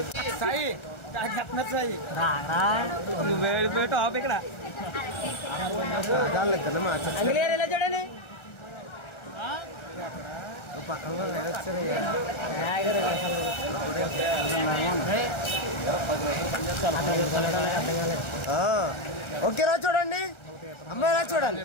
సాయి చెప్తున్నారు సాయి నువ్వు వెళ్ళిపోయి టాప్ ఇక్కడ అంగ్లేర్ ఎలా చూడండి. ఓకే రా చూడండి. అమ్మాయి ఎలా చూడాలి?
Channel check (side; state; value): right; late; 1.3 ms